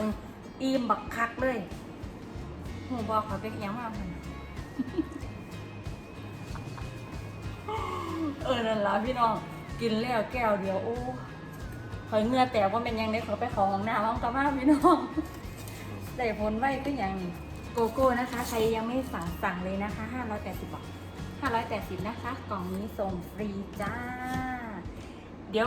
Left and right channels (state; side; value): identical; both; correlation 1.00